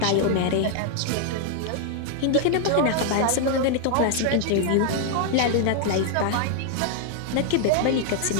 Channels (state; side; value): different; both; correlation 0.00